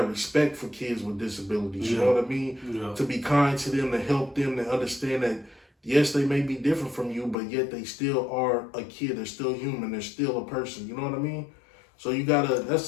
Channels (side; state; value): right; drops out; at 7.4 s